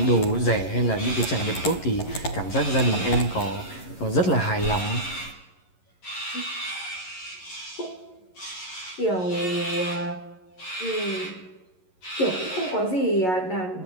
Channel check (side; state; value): right; late; 11 ms